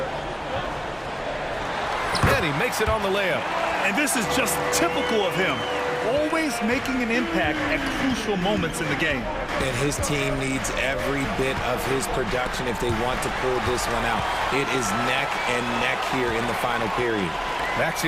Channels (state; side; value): identical; both; correlation 1.00